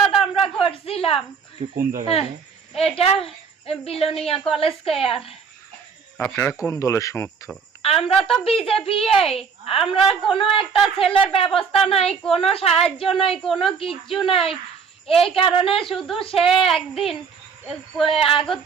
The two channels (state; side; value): quieter; left; 6.0 dB